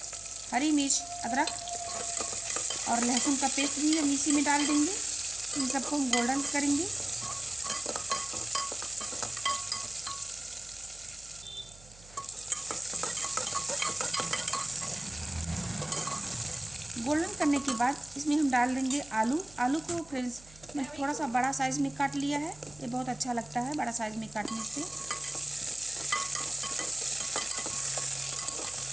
हरी मिर्च अदरक और लहसुन का पेस्ट भी हम इसी में डाल देंगे। इन सबको हम गोल्डन करेंगे। गोल्डन करने के बाद इसमें हम डाल देंगे आलू को फ्रेंड्स मैं थोड़ा सा बड़ा साइज़ में काट लिया है। ये बहुत अच्छा लगता है बड़ा साइज़ में काटने से।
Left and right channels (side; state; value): right; noise; hum, 22 dB below the sound